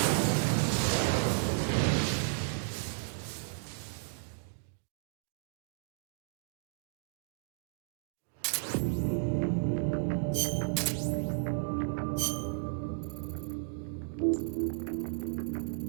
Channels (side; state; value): left; silent; digital silence